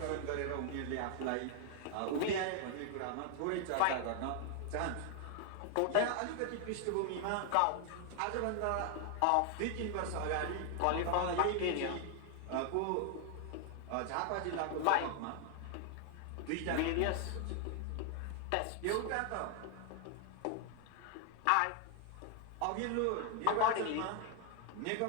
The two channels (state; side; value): different; both; correlation 0.00